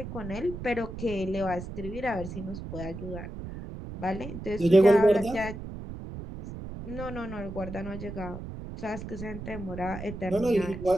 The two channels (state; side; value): noise; right; rumble, 9 dB below the sound